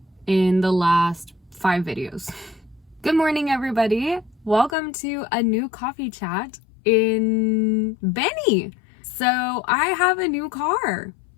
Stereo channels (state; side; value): drops out; right; at 4.8 s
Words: in the last 5 videos? Good morning, everybody. Welcome to a new coffee chat in Benny. So I have a new car.